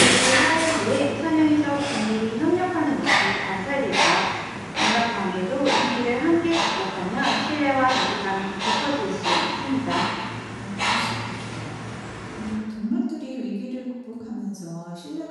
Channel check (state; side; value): identical; both; correlation 1.00